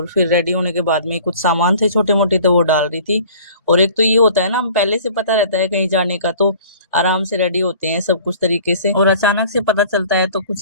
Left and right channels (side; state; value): both; inverted; correlation -0.48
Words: फिर रेडी होने के बाद में कुछ सामान थे छोटे मोटे, तो वो डाल रही थी। और एक तो ये होता है ना, हम पहले से पता रहता है कहीं जाने का तो आराम से रेडी होते हैं सब कुछ तरीके से, और अचानक से पता चलता है तो